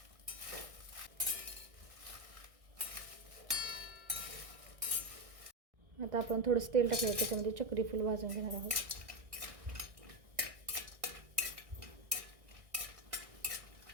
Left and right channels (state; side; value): late; left; 1.6 ms